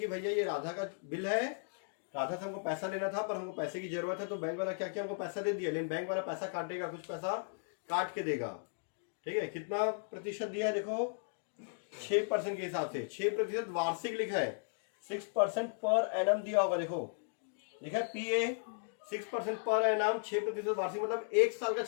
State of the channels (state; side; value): silent; right; digital silence